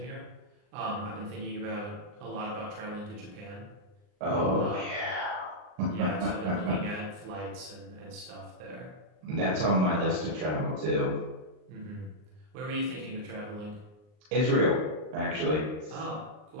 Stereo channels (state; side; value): late; left; 39 ms